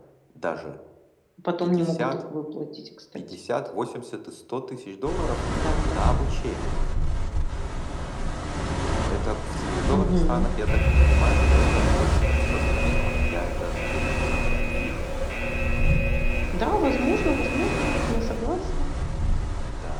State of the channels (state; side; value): identical; both; correlation 1.00